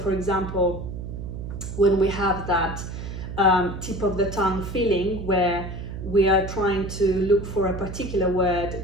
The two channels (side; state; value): right; noise; hum, 8 dB below the sound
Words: example, when we have that tip of the tongue feeling where we are trying to look for a particular word